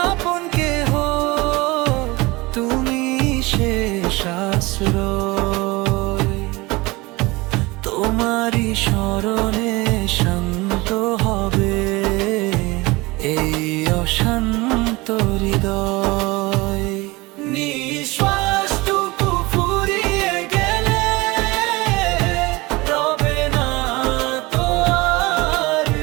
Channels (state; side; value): quieter; left; 22.7 dB